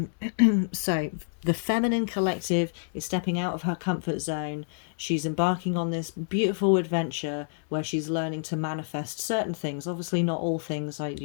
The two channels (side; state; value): right; silent; digital silence